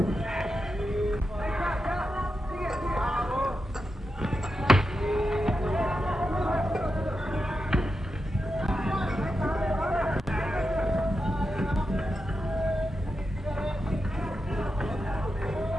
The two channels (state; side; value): normal; both; correlation 0.88